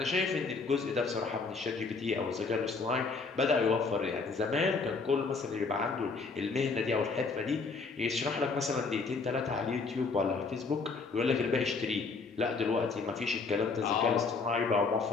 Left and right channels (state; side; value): quieter; right; 4.4 dB